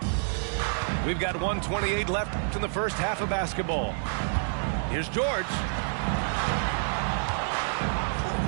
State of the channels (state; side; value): silent; left; digital silence